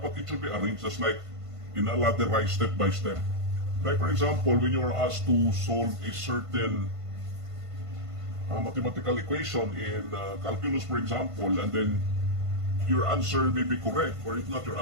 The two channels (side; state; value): left; late; 1.5 ms